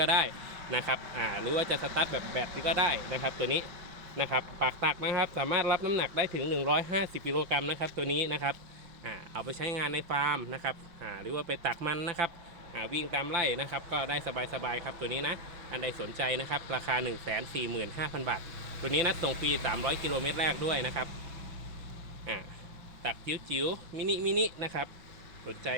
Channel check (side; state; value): left; late; 5.7 ms